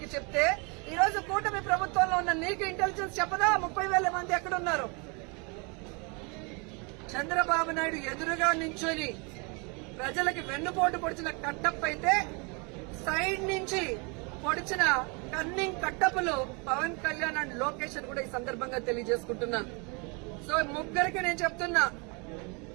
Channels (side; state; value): left; quieter; 32.1 dB